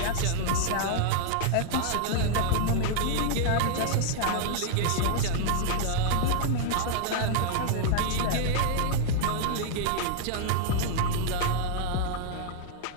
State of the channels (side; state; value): both; different; correlation -0.01